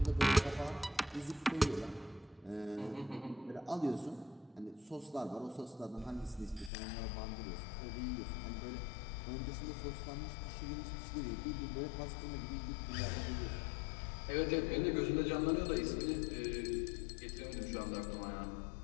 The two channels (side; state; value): right; drops out; at 6.7 s